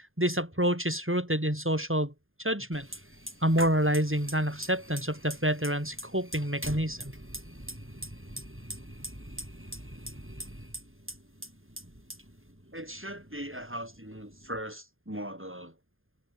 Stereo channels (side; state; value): left; late; 0.60 ms